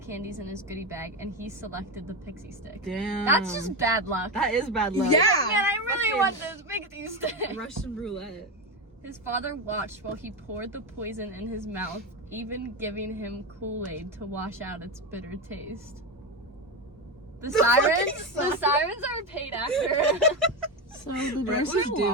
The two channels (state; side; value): normal; both; correlation 0.15